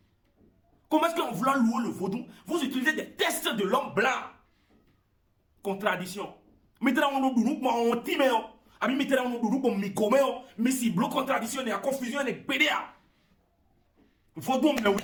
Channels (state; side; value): identical; both; correlation 1.00